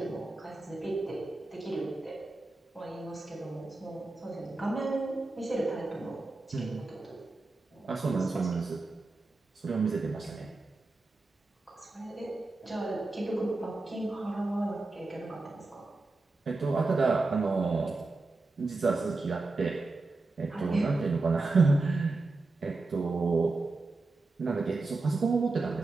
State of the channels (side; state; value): left; quieter; 3.4 dB